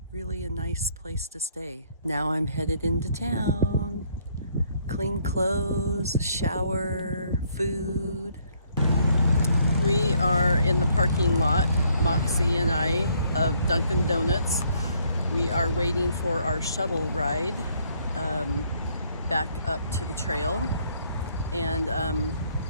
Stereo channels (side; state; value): both; inverted; correlation -0.67